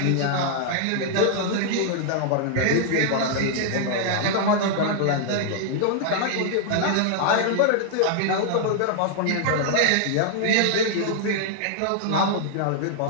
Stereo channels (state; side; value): different; both; correlation -0.01